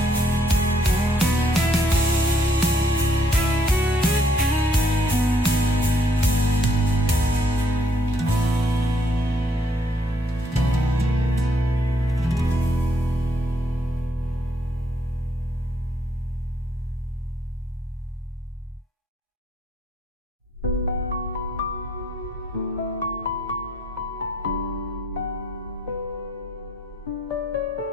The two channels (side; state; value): both; normal; correlation 0.68